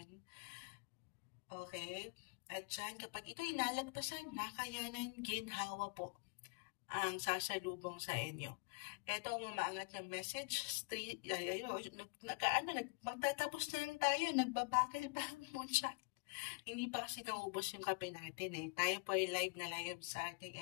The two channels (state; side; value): quieter; right; 32.5 dB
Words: Okay? At dyan, kapag ito'y nalagpasan, nakayanan, ginhawa po ang sasalubong sa inyo. Ito ang umaangat na message. Magtatapos na lang tayo. Nagbabakil pa ang moonshot. Hindi pa kasi naubos yung kape natin eh. Tayo po ay live na live sa ating